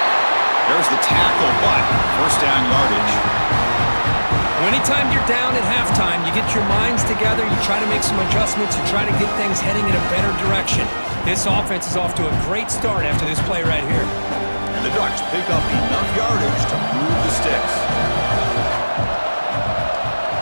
There's the tackle, but first down yardage. Anytime you're down at halftime, you get your minds together, you try to make some adjustments, you try to get things heading in a better direction. This offense is off to a great start after this play right here. And the Ducks pick up enough yardage to move the sticks.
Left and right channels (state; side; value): inverted; both; correlation -1.00